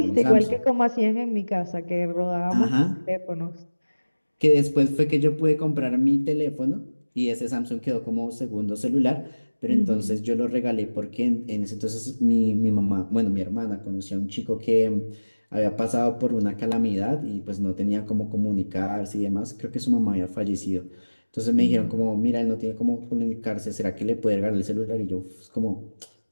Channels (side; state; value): both; inverted; correlation -1.00